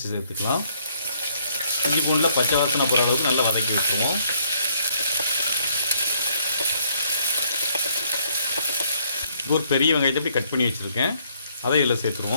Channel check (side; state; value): both; inverted; correlation -0.67